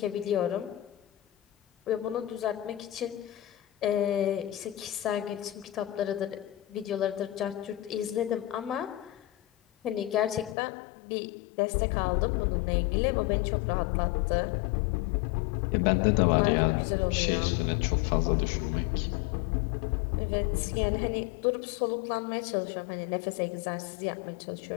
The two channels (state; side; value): drops out; right; at 10.6 s